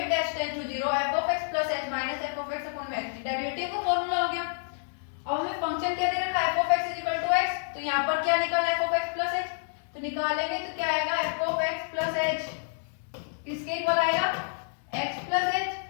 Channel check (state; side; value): silent; right; digital silence